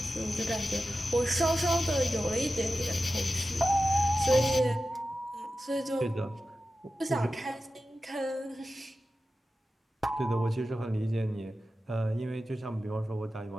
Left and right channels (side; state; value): both; normal; correlation 0.93